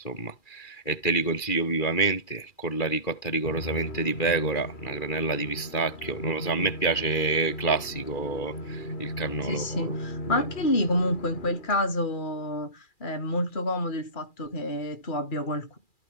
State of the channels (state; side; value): late; right; 2.4 ms